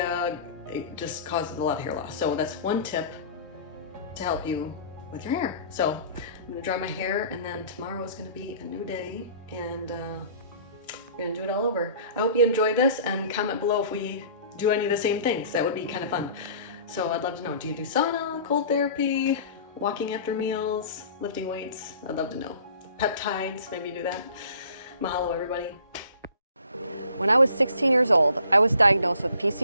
it just causes a lot of hair loss. So that's one tip to help you with your hair. So I'm gonna dry my hair, and then tomorrow is gonna be a new day, and we're gonna do it all over. I hope you enjoy this, and comment below if we do any of the same things. That would be kind of fun. So I'd love to know, do you do sauna, cold therapy, walking after meals, lifting weights? I'd love to know. Peptides, maybe you do that. Mahalo, everybody. When I was 16 years old, I was diagnosed with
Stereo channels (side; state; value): both; inverted; correlation -0.48